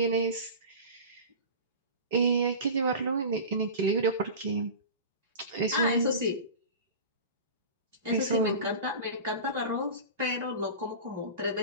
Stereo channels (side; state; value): both; inverted; correlation -0.32